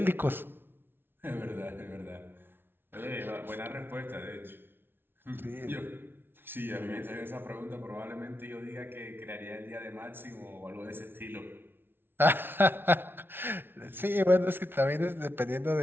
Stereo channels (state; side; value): late; left; 0.11 ms